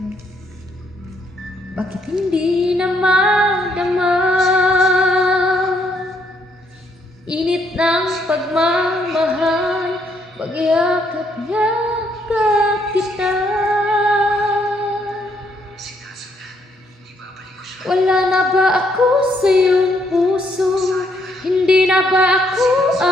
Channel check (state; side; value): normal; both; correlation 0.72